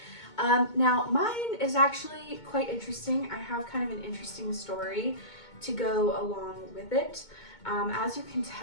Now, mine is actually quite interesting. I have kind of an interesting story to go along with it. As you can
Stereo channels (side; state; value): right; late; 2.2 ms